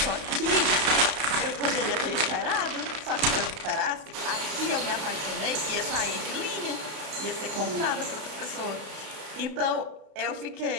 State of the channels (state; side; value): late; left; 32 ms